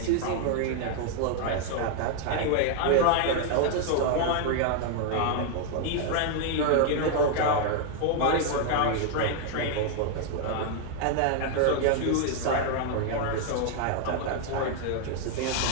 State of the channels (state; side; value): different; both; correlation 0.00